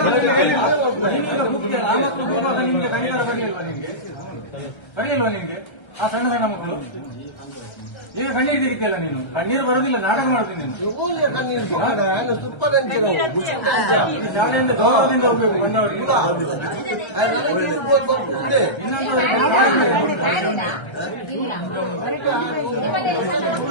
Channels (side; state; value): right; late; 1.3 ms